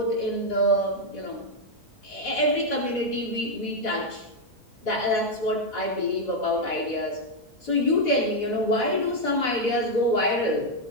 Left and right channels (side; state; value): both; normal; correlation 0.01